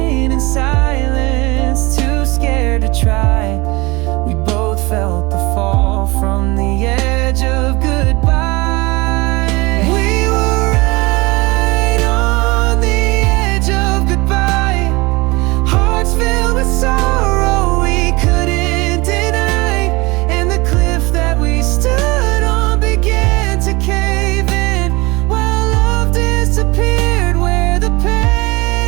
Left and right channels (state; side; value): quieter; left; 23.8 dB